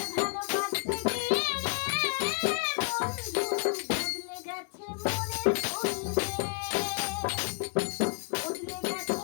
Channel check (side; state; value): right; quieter; 38.6 dB